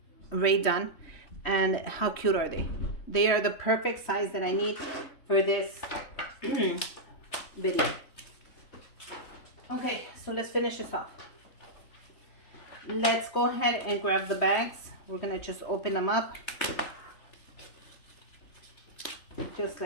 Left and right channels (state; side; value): late; right; 3.2 ms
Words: Ray Dunn. And how cute are they? They are the perfect size that I need for this video. Okay, so let's finish this off. Let's go ahead and grab the bags. We're gonna just open them up just